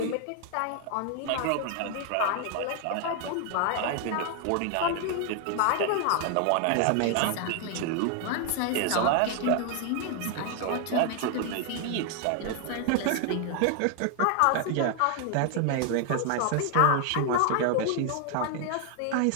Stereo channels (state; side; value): different; both; correlation 0.00